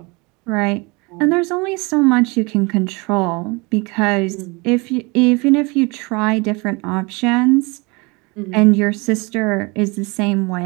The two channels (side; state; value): left; quieter; 27.0 dB